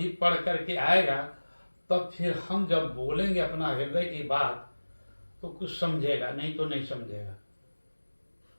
पढ़ करके आएगा, तब फिर हम जब बोलेंगे अपना हृदय की बात, तो कुछ समझेगा, नहीं तो नहीं समझेगा।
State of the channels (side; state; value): both; inverted; correlation -1.00